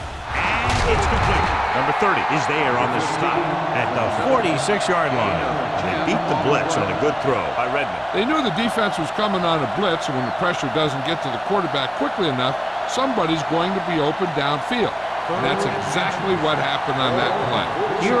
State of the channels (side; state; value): both; identical; correlation 1.00